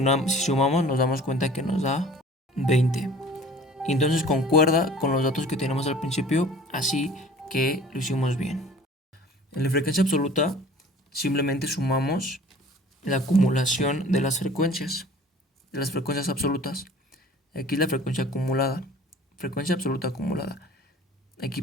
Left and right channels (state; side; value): normal; both; correlation 0.47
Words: nos damos cuenta que nos da 20. Y entonces concuerda con los datos que tenemos al principio, así que lo hicimos bien. En la frecuencia absoluta simplemente sumamos la acumulación de las frecuencias absolutas. Aquí la frecuencia acumulada, frecuencia absoluta acumulada. Aquí